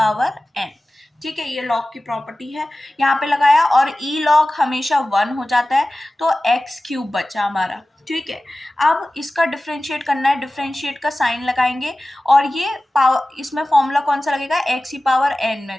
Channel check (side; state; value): both; normal; correlation 0.96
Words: n। ठीक है, ये log की प्रॉपर्टी है, यहाँ पे लगाया, और e log हमेशा 1 हो जाता है, तो x क्यूब बचा हमारा। ठीक है, अब इसका डिफरेंशिएट करना है, डिफरेंशिएट का साइन लगाएंगे, और ये पावर, इसमें फॉर्मूला कौन सा लगेगा, x की पावर n में,